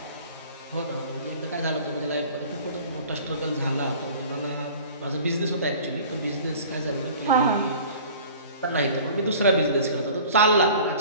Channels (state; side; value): inverted; both; correlation -0.45